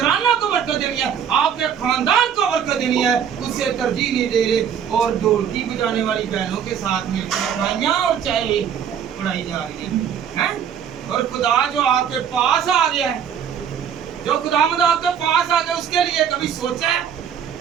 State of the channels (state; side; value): quieter; left; 8.3 dB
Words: को बरकत देनी है, आपके खानदान को बरकत देनी है, उसे तरजीह नहीं दे रहे। और ढोलकी बजाने वाली बहनों के साथ मिलकर मिठाइयाँ और चाय पढ़ाई जा रही है। और खुदा जो आपके पास आ गया है, जो खुदावंद आपके पास आ गया, उसके लिए कभी सोचा है